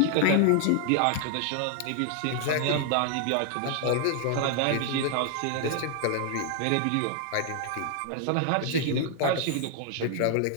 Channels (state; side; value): different; both; correlation 0.00